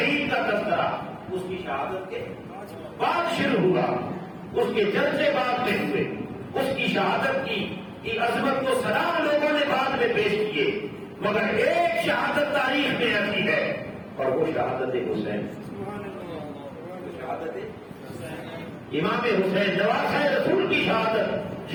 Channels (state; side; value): identical; both; correlation 1.00